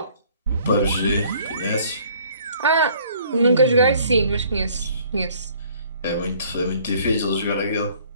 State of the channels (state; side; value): inverted; both; correlation -0.57